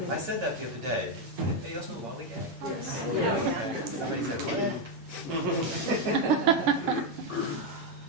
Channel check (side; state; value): left; late; 8.8 ms